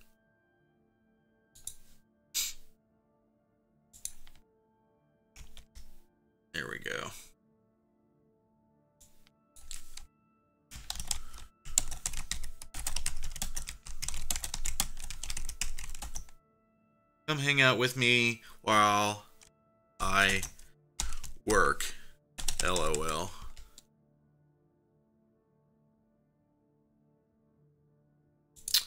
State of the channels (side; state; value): both; identical; correlation 1.00